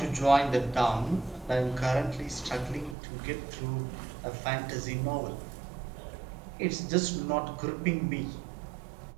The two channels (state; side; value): drops out; left; at 3.0 s